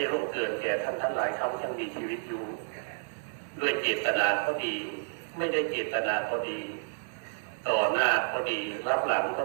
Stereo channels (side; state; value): left; silent; digital silence